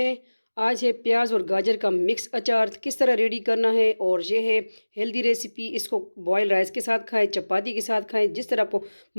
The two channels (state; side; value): inverted; both; correlation -1.00